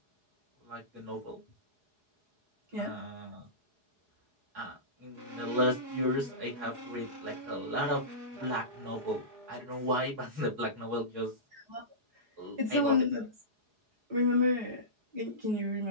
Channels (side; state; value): left; late; 4.8 ms